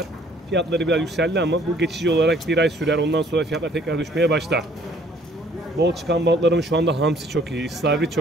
Fiyatları biraz yükseldi ama bu geçici olarak bir ay sürer. Ondan sonra fiyatlar tekrar düşmeye başlar. Bol çıkan balıklarımız şu anda hamsi çok iyi, istavrit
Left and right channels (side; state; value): both; normal; correlation 0.60